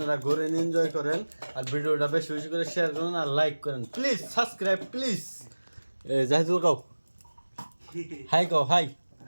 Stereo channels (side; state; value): both; inverted; correlation -1.00